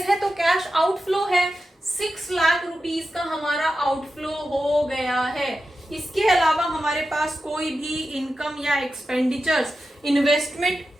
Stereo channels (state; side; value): normal; both; correlation 0.91